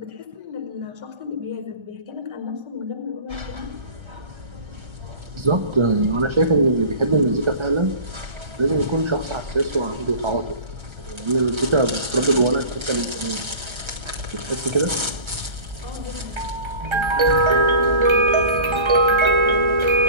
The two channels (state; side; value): late; left; 1.3 ms